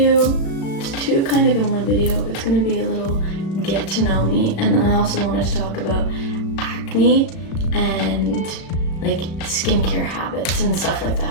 two kind of in one video. It's gonna be a little get to know me, and then I also wanted to talk about acne and like skincare habits and stuff like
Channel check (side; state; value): right; late; 36 ms